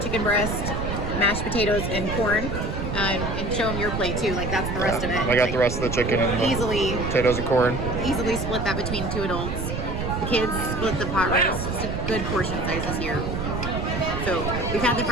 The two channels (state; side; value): noise; right; rumble, 3 dB below the sound